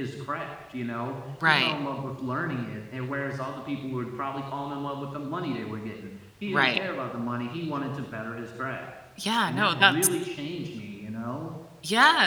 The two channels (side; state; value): both; identical; correlation 1.00